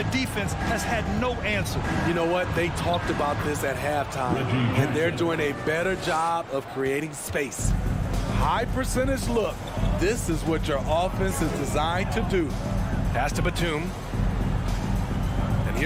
defense has had no answer. You know what? They talked about this at halftime, and they're doing a better job of creating space. High percentage look. This is what your offense is designed to do. Pass to Batum. And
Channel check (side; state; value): both; identical; correlation 1.00